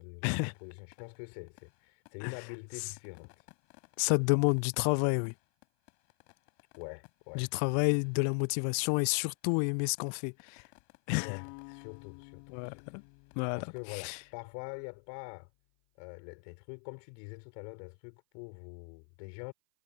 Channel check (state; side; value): silent; right; 54 dB below the other